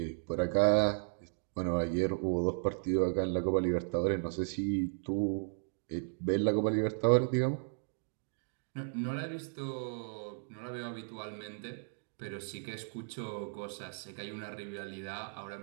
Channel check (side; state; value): left; silent; digital silence